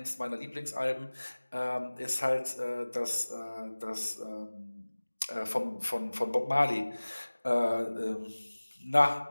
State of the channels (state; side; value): inverted; both; correlation -1.00